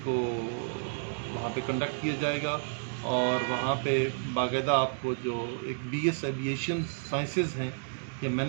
کو وہاں پہ کنڈکٹ کیا جائے گا. اور وہاں پہ باقاعدہ آپ کو جو ایک بی ایس ایویشن سائنسز ہیں یا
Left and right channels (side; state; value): left; silent; digital silence